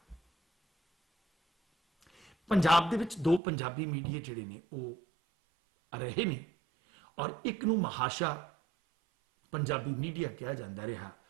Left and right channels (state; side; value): drops out; left; at 3.4 s